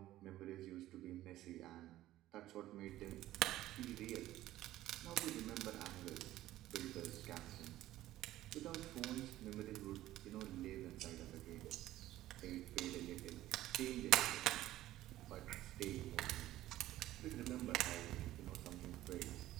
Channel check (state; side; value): quieter; left; 14.8 dB